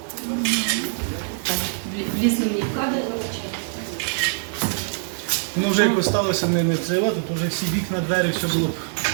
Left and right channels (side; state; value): left; silent; 63 dB below the other